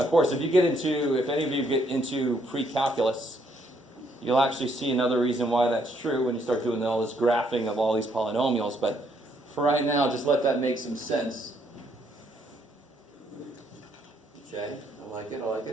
of course, if any of you get into pre-calculus, you'll actually see another reason why that's true when you start doing all this graphing of all these polynomials. But for right now, just let that make some sense. Okay, I like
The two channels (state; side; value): normal; both; correlation 0.70